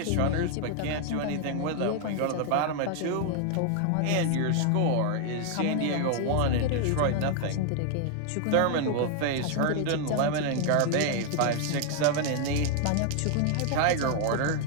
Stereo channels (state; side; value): different; both; correlation 0.00